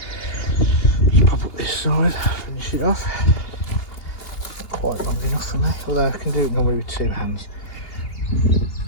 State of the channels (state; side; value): late; right; 2.8 ms